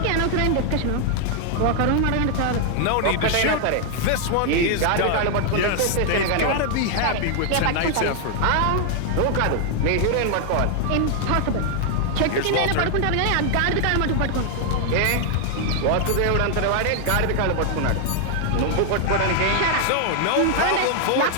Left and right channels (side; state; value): both; different; correlation 0.00